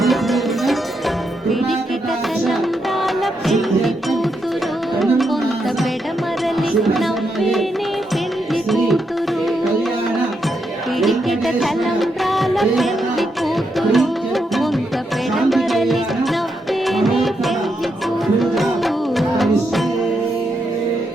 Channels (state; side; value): normal; both; correlation 0.81